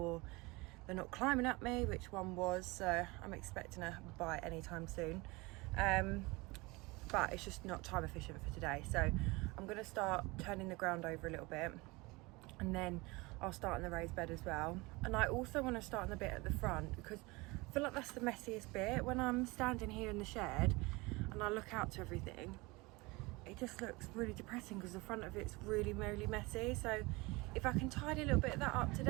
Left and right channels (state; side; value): quieter; left; 24.1 dB